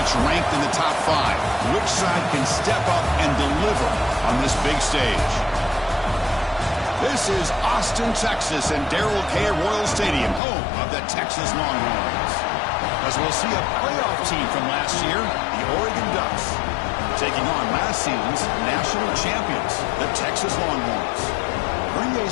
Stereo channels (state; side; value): drops out; right; at 10.4 s